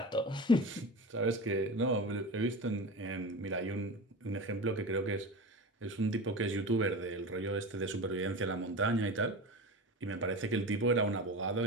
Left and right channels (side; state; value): both; normal; correlation 0.28